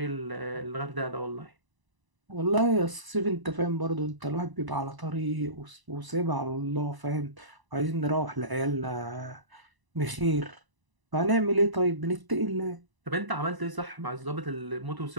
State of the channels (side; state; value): left; late; 1.0 ms